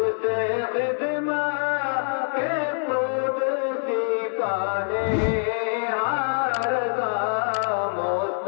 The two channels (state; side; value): silent; right; digital silence